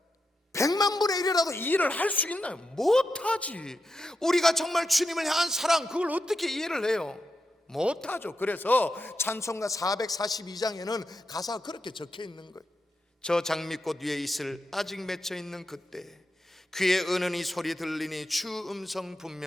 100만 분의 1이라도 이해를 할 수 있나요? 못하지. 우리가 정말 주님을 향한 사랑, 그걸 어떻게 이해를 해요? 못하죠. 그래서 찬송가 442장에는 가사가 그렇게 적혀 있는 거예요. 저 장미꽃 위에 있을 아직 맺혀 있는 그때 귀에 은은히 소리 들리니 주 음성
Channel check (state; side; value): normal; both; correlation 0.86